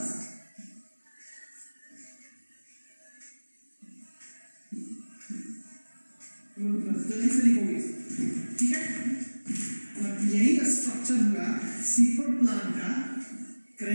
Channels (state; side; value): inverted; both; correlation -1.00